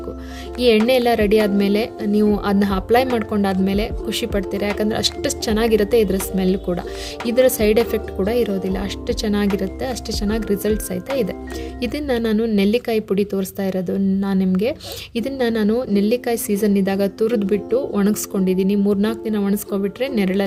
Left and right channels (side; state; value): both; identical; correlation 1.00